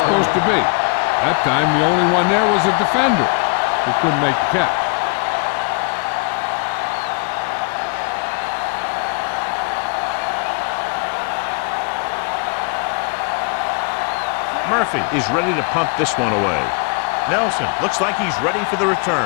to be. That time, the only one there was a defender who couldn't make the catch. Murphy is ready to punt this one away. Nelson looks like he's ready for the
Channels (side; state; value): right; quieter; 34.1 dB